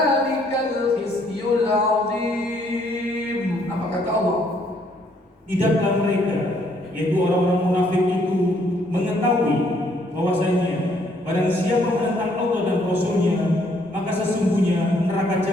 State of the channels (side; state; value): both; normal; correlation 0.67